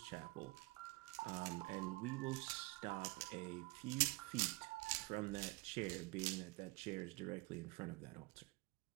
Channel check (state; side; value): quieter; left; 24.0 dB